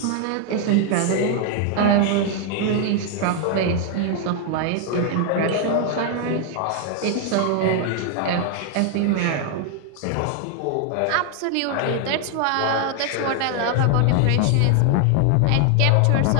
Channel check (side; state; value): both; different; correlation 0.00